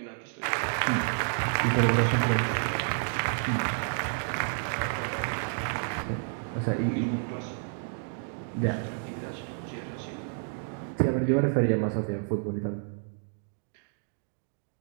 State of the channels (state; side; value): silent; left; 58 dB below the other